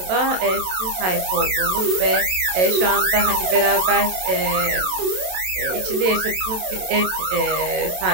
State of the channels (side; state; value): left; late; 27 ms